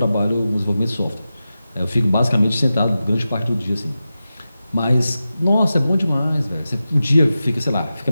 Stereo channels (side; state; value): both; inverted; correlation -0.93